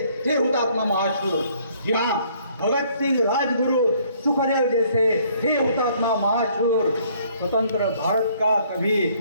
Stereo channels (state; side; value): inverted; both; correlation -0.62